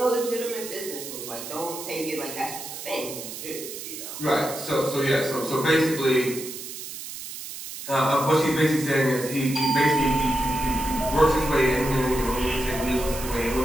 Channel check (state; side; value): noise; right; hiss, 10 dB below the sound